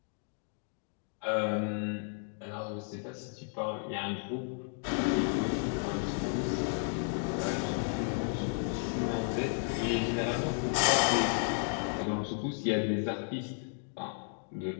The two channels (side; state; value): right; silent; 56 dB below the other